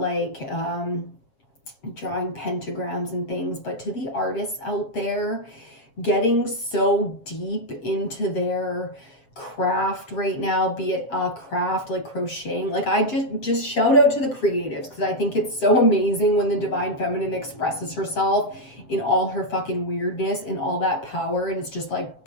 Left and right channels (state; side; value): late; right; 7.5 ms